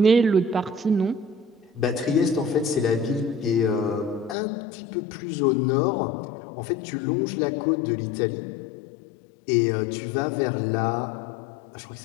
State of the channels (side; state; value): right; drops out; at 4.4 s